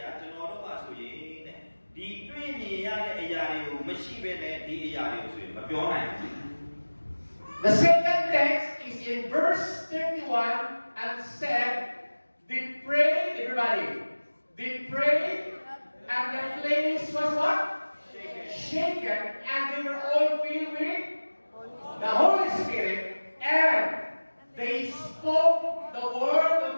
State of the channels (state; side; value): inverted; both; correlation -1.00